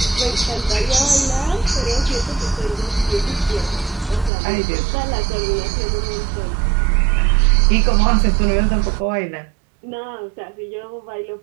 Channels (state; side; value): drops out; left; at 4.3 s